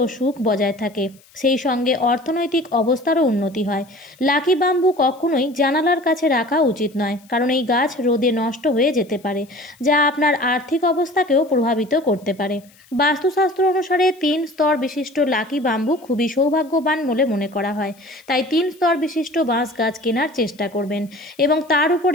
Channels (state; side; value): noise; left; hiss, 29 dB below the sound